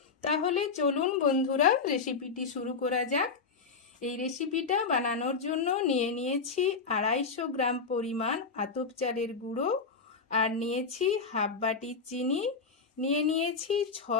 তাহলে চলুন বন্ধুরা, রেসিপিটি শুরু করা যাক। এই রেসিপিটা বানানোর জন্য নিয়ে নিয়েছি 250 গ্রাম পরিমাণ আতপ চালের গুঁড়ো, আর নিয়েছি হাফ বাটি চিনি, নিয়েছি 6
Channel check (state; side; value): quieter; right; 4.9 dB